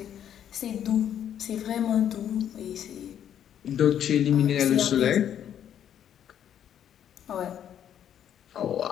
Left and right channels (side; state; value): right; quieter; 9.8 dB